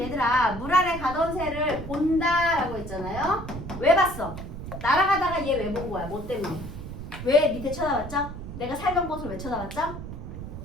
물 아래 가던 새를 본다라고 했잖아요. 왜 봤어? 날아가다가 얘 왜 본 거야? 뭐 때문에? 왜 밑에 쳐다봤죠? 내가 살던 곳을 왜 쳐다봤죠?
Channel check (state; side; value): noise; right; rumble, 9 dB below the sound